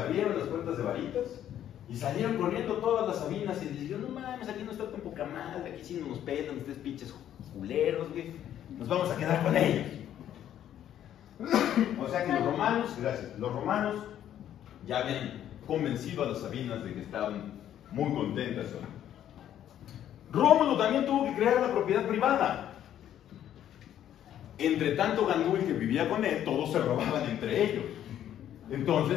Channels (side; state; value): right; quieter; 10.9 dB